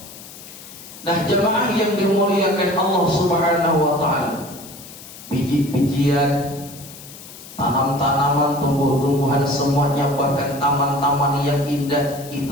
Nah jemaah yang dimuliakan Allah Subhanahu wa taala, biji-bijian, tanam-tanaman, tumbuh-tumbuhan, semuanya, bahkan taman-taman yang indah,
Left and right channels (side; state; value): left; noise; hiss, 17 dB below the sound